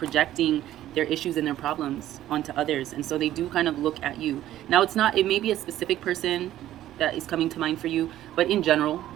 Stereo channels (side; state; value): left; quieter; 13.2 dB